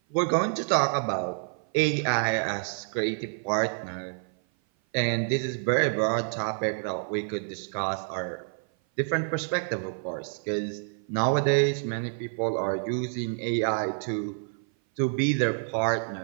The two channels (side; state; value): left; silent; 56 dB below the other